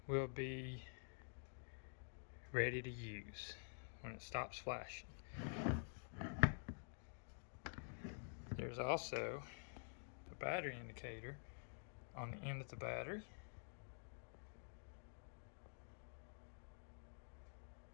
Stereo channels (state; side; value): silent; right; digital silence